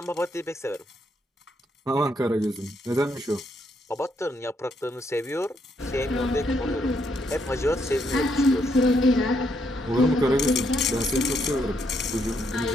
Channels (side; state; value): both; normal; correlation 0.75